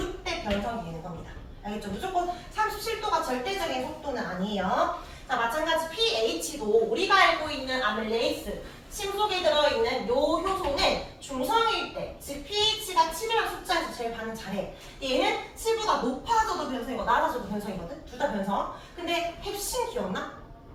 변성이 되는 겁니다. 알겠죠? 무조건 37도가 절대적인 속도는 아니에요. 자, 마찬가지 pH도 우리가 알고 있는 아밀레이스 침 속에 들어있는 요 효소는 중성일 때, 즉 pH가 7이라는 숫자에서 제일 반응 잘해. 얘는 7보다 높아져도 변성이고 낮아져도 변성이거든? 둘 다 변성. 근데 햅신 기억나?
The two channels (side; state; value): both; identical; correlation 1.00